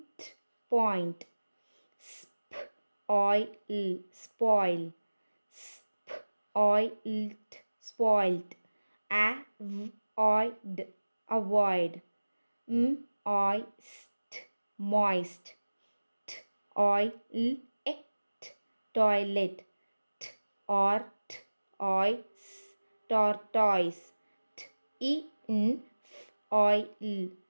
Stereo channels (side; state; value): both; inverted; correlation -1.00